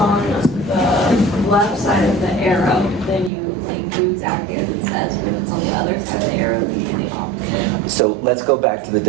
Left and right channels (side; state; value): left; drops out; at 3.3 s